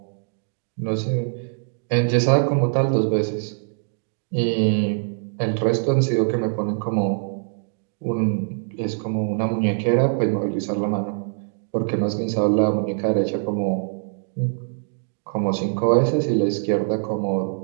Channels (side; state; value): left; silent; digital silence